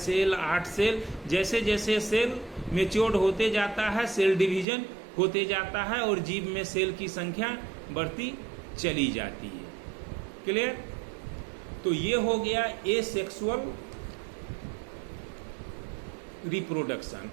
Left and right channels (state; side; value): drops out; left; at 4.7 s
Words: 8 सेल, जैसे जैसे सेल मेच्योर्ड होते जाता है सेल डिवीजन होते जाता है और जीव में सेल की संख्या बढ़ती चली जाती है। क्लियर? तो ये हो गया एसेक्सुअल रिप्रोडक्शन